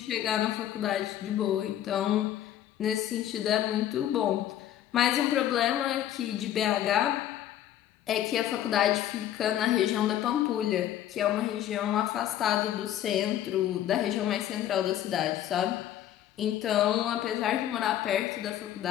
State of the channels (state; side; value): quieter; right; 11.7 dB